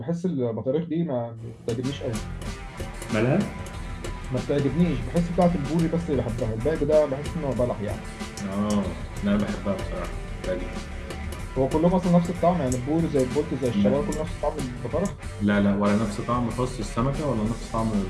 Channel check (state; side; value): identical; both; correlation 1.00